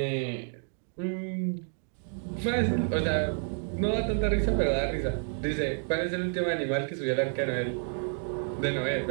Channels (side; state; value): left; silent; 58 dB below the other